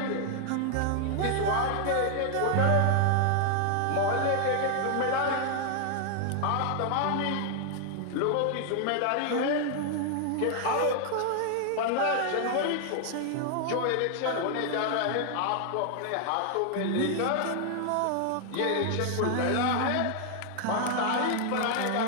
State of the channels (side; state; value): both; different; correlation 0.00